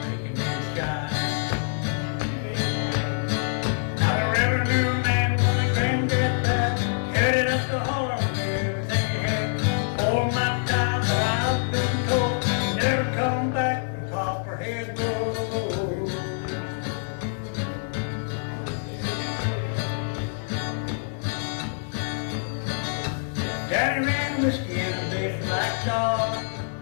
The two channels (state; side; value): silent; right; digital silence